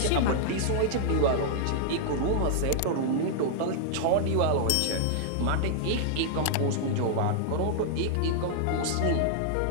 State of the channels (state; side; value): different; both; correlation -0.01